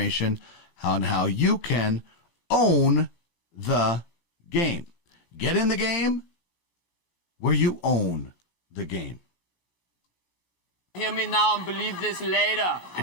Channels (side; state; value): right; late; 16 ms